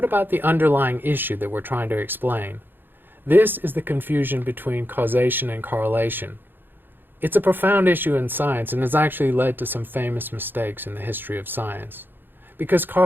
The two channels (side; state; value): left; late; 0.097 ms